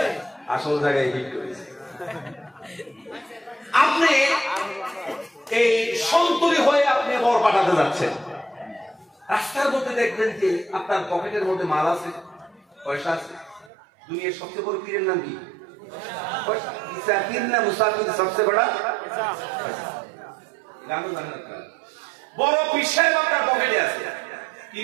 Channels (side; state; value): left; drops out; at 13.7 s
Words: আসল জায়গায় হিট করেছে। আপনি এই সন্তুলি হয়ে আপনি বর পাঠাতে যাচ্ছেন, রাস্তার মধ্যে দেখবেন যে আপনার পকেটের মধ্যে মাল আছে, পয়সা আছে। দুনিয়ার সবচেয়ে বড় পীরের নাম কি? সবচেয়ে বড় বড় পীর সাহেব আপনার পকেটে আছে।